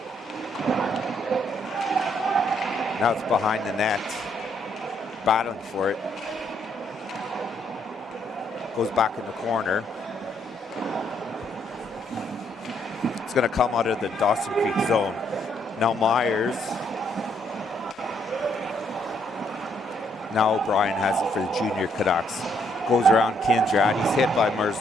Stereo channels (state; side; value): normal; both; correlation 0.71